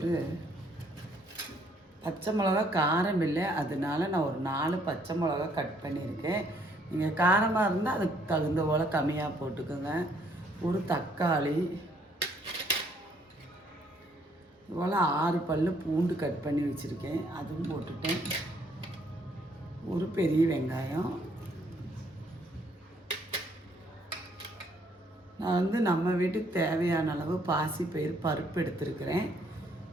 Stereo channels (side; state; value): both; normal; correlation 0.67